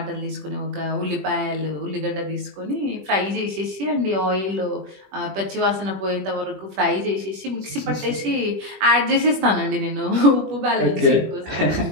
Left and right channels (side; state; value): left; late; 21 ms